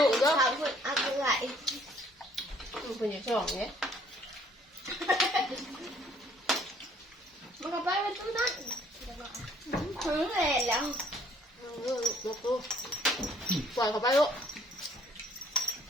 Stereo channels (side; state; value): both; normal; correlation 0.61